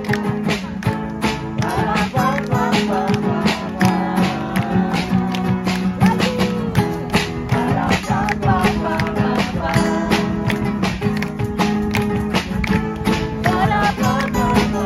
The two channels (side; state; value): both; identical; correlation 1.00